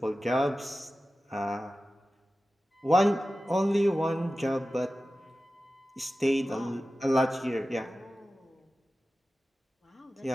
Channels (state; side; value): normal; both; correlation 0.95